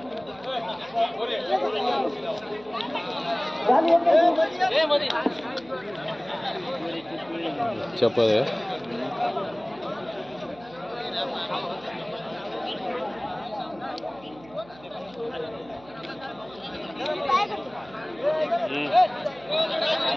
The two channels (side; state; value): right; noise; hum, 23 dB below the sound